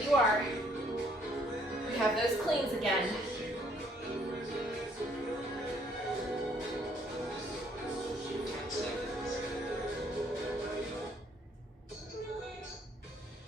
are. We have those cleans again. 10 seconds.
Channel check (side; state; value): both; normal; correlation 0.65